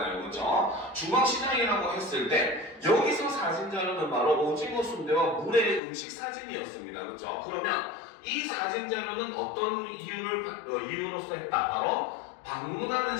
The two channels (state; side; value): drops out; right; at 5.8 s